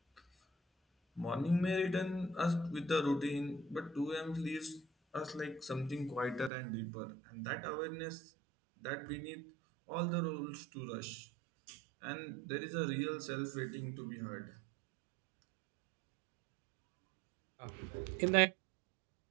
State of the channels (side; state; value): left; drops out; at 6.5 s